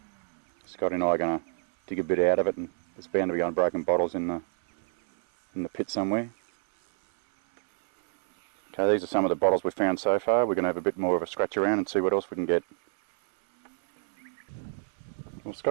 Scotty and I are going to dig a bit out of it, and there's bound to be unbroken bottles in the pit somewhere. Okay, these are some of the bottles we've found so far. We're going to have a bit more of a scratch around and see what else we can get. Well,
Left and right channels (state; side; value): silent; left; 60 dB below the other